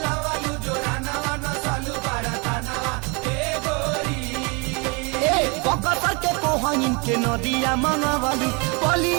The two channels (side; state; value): left; quieter; 30.8 dB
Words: वालू जो रानावा न सालू बाराता नवा ए गोरी बकसर के कोहइन के नदिया मंगवालू